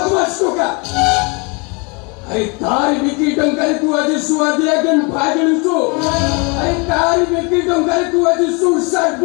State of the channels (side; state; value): right; quieter; 31.1 dB